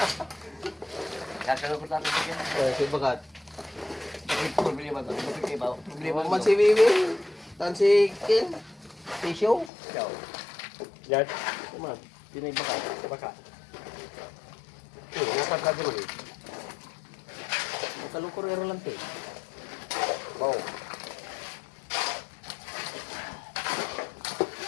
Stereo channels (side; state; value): right; drops out; at 9.7 s